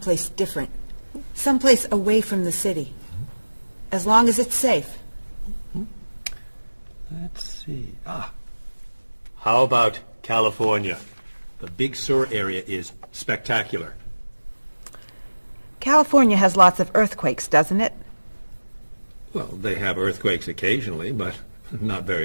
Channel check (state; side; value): inverted; both; correlation -1.00